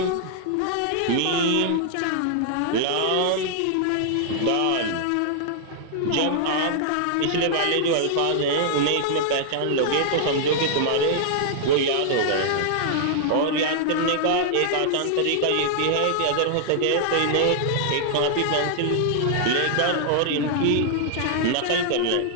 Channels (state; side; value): different; both; correlation -0.01